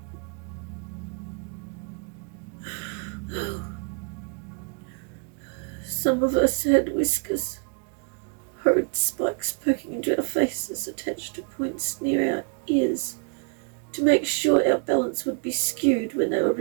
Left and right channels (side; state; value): left; quieter; 38.3 dB